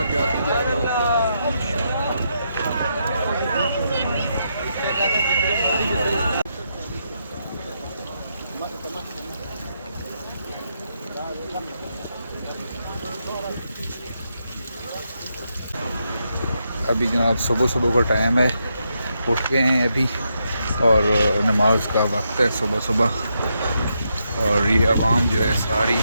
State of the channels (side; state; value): both; inverted; correlation -0.82